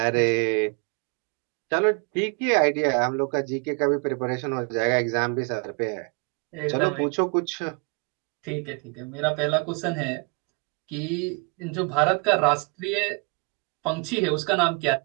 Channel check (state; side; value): quieter; left; 33.3 dB